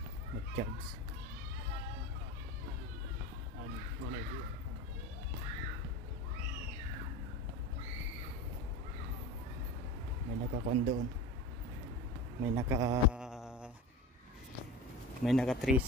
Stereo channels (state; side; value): normal; both; correlation 0.31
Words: mag-charge. May naka-kwan doon, may naka